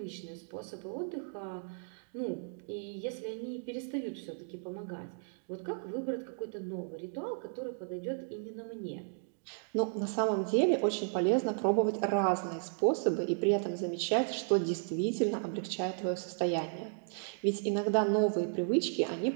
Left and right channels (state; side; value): silent; left; digital silence